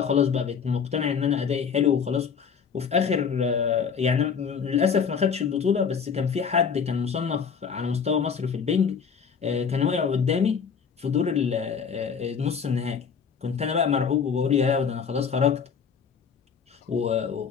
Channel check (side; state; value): right; quieter; 6.5 dB